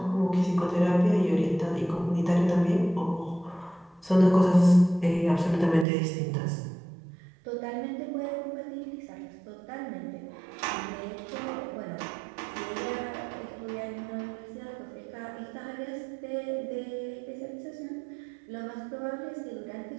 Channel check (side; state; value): left; drops out; at 5.9 s